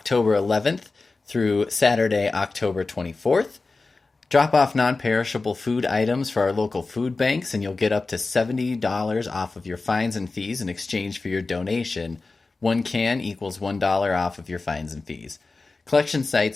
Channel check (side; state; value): right; quieter; 3.7 dB